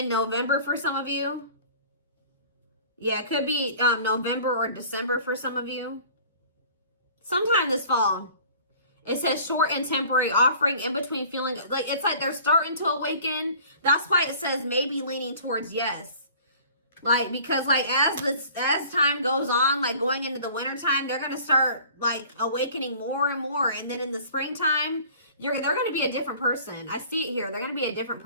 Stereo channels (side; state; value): both; inverted; correlation -0.47